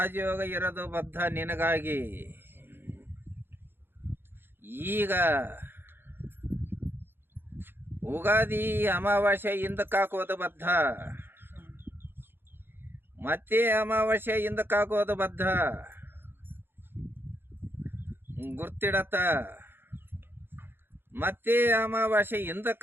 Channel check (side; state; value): left; late; 0.10 ms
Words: ಇರೋದು ಬದ್ಧ ನಿನಗಾಗಿ. ಈಗ ಉಗಾದಿ ಅಮಾವಾಸ್ಯೆ ಹಿಂದಕ್ಕಾಕೋದು ಬದ್ಧ, ಮತ್ತೆ ಅಮಾವಾಸ್ಯೆ ಹಿಂದಕ್ಕಾಕೋದು ಬದ್ಧ. ಗುರ್ತಿಡತ್ತ. ಮತ್ತೆ ಅಮಾವಾಸ್ಯೆ